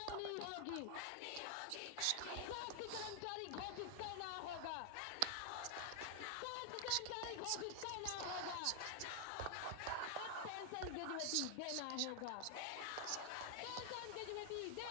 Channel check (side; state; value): both; different; correlation 0.00